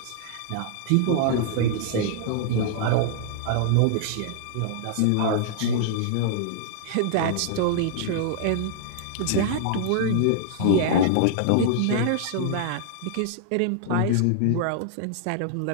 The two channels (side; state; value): both; different; correlation -0.01